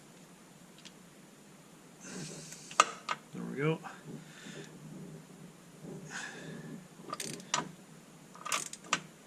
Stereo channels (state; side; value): identical; both; correlation 1.00